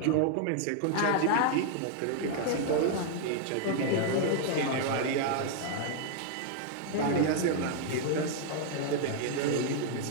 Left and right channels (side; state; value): both; different; correlation 0.00